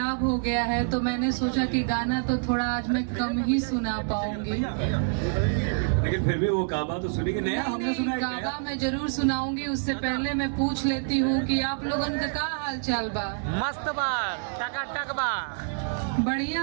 हो गया है, तो मैंने सोचा कि गाना तो थोड़ा आज मैं कम ही सुना पाऊंगी। लेकिन फिर भी वो काबा तो सुनेंगे। नया हमने सुना है, काबा मैं जरूर सुनाऊंगी। उससे पहले मैं पूछ लेती हूँ कि आप लोगन का हाल चाल बा? मस्त बा, टकाटक बा,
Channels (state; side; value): silent; left; digital silence